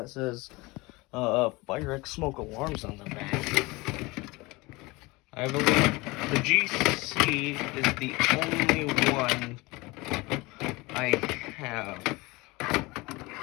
says firex smoke alarms on the back. I believe the GC is the only one I have.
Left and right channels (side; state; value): right; quieter; 23.3 dB